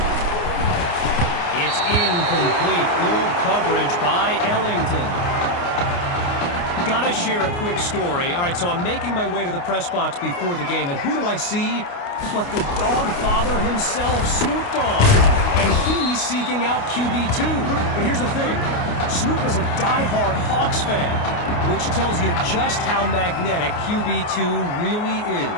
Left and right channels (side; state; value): right; late; 29 ms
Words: It's incomplete. Good coverage by Ellington. Gotta share a quick story. All right, so I'm making my way to the press box before the game, and who do I see? But the dog father himself, Snoop Dogg. And he's seeking out QB2. But here's the thing. Snoop is a diehard Hawks fan, which tells you just how magnetic QB2 really